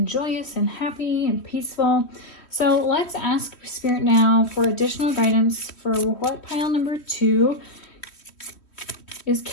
joyous and happy and peaceful. So let's ask Spirit now for additional guidance for what pile number two is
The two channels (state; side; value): late; right; 3.1 ms